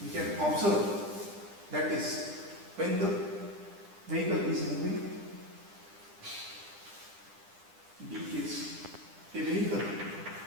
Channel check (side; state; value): left; late; 10 ms